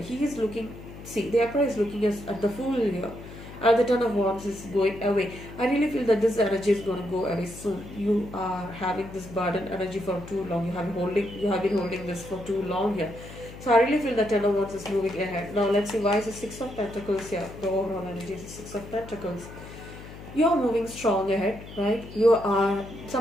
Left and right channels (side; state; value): left; noise; hum, 15 dB below the sound